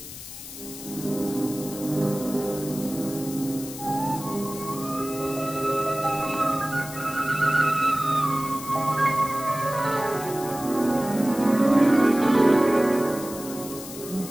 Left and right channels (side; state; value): left; noise; hiss, 12 dB below the sound